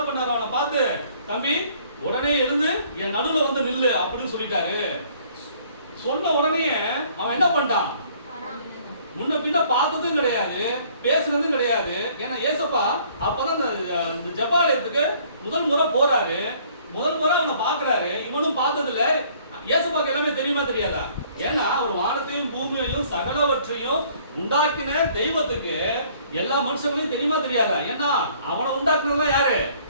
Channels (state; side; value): inverted; both; correlation -0.59